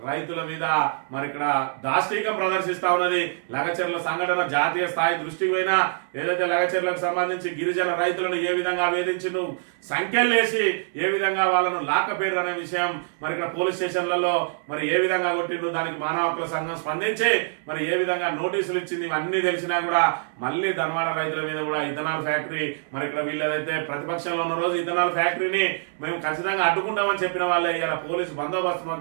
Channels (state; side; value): silent; left; 62 dB below the other